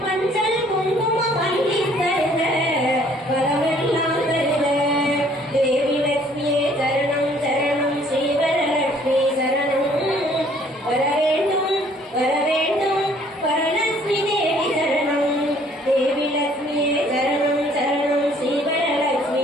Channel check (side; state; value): both; normal; correlation 0.60